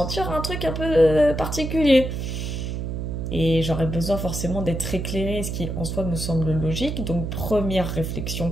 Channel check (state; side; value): noise; right; hum, 4 dB below the sound